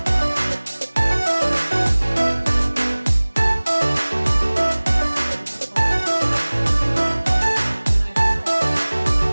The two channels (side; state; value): both; inverted; correlation -1.00